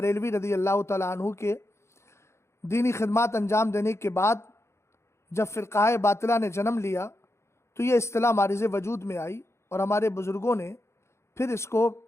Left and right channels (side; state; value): right; late; 0.13 ms